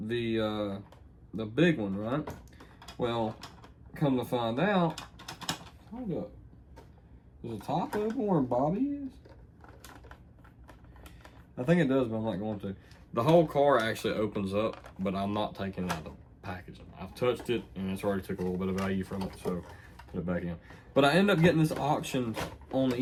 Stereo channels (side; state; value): both; identical; correlation 1.00